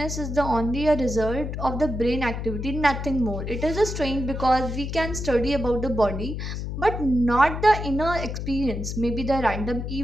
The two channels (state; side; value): noise; left; hum, 5 dB below the sound